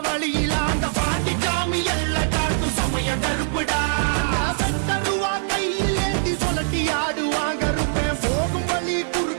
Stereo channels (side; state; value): left; silent; digital silence